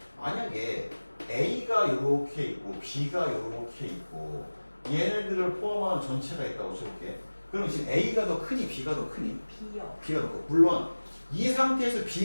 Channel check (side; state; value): both; inverted; correlation -1.00